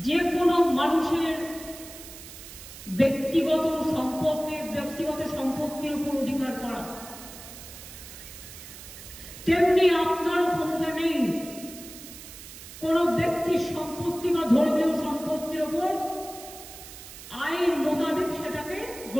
যে কোনো মানুষের ব্যক্তিগত সম্পত্তির উপর অধিকার করা, তেমনি আপনারও ক্ষমতা নেই কোন ব্যক্তির সম্পত্তি বা ধর্মীয় সম্পত্তির উপর আইন মোতাবেক সেটাকে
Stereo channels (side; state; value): right; noise; hiss, 15 dB below the sound